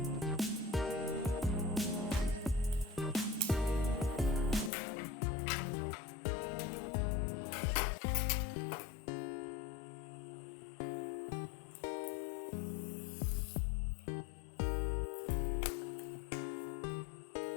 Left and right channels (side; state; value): right; drops out; at 4.7 s